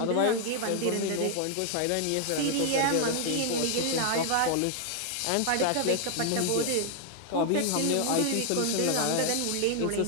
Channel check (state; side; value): different; both; correlation 0.00